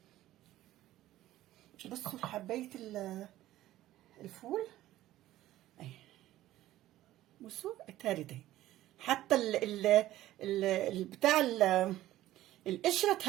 بصوا حبايه الفول اهي، بصوا اتهرت اهي، حتى بتاع القشره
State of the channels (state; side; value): quieter; left; 14.7 dB